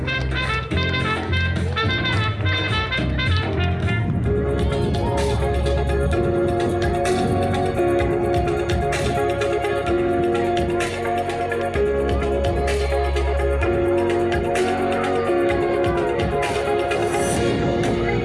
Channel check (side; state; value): both; identical; correlation 1.00